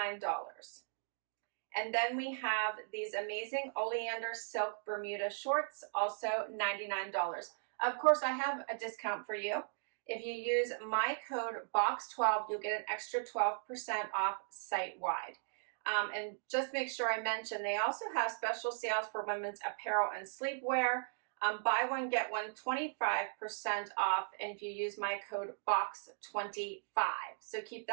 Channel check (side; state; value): left; silent; digital silence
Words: And then we have these amazing Oleander Silk Bermuda Shorts, also $99. Of course, I have a discount for you. If you use my code BOX12, you'll get an extra 12% off site-wide. And just make sure I mention, they also have special sales for women's apparel and sleepwear. Buy one, get one, 25% off, and if you use my code BOX25. So keep